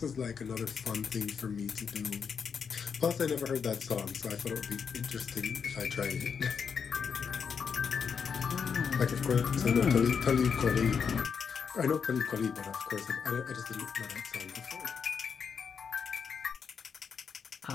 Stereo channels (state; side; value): quieter; right; 6.4 dB